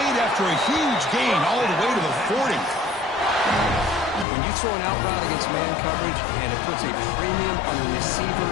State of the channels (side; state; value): right; drops out; at 4.2 s